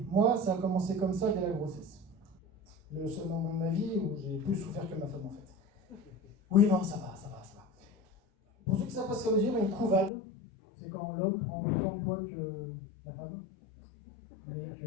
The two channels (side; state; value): right; drops out; at 10.1 s